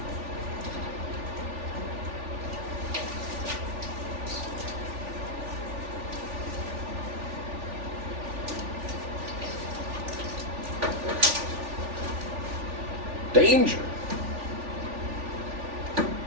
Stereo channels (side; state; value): left; late; 3.4 ms